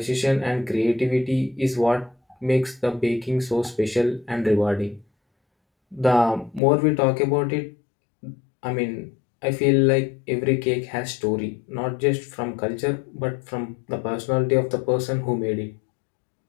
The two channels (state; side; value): drops out; right; at 6.6 s